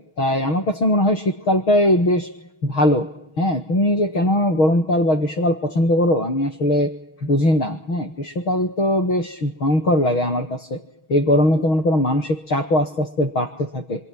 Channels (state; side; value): late; right; 6.4 ms